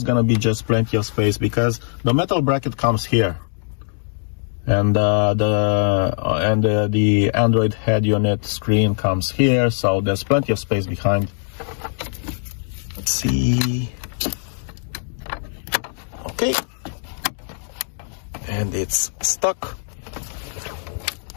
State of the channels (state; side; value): silent; right; digital silence